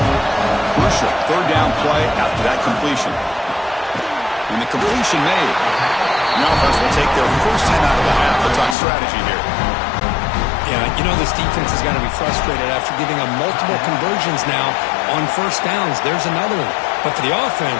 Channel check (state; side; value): drops out; right; at 8.8 s